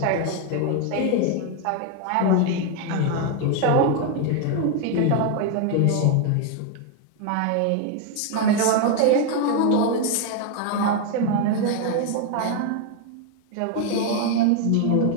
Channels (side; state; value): both; different; correlation 0.01